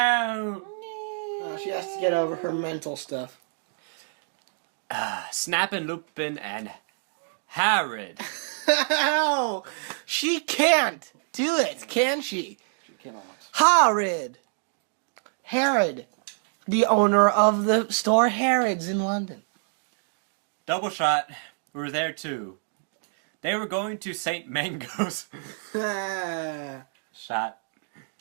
Oh, she has to get over her mental stuff. Snappin', Lupin, and Harrod. Ow! She can't do it, can she? She cannot. Herod, the owner of the store Harrods in London. Double shot were there too. They were going to St. Mango's. Shot.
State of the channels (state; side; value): silent; left; digital silence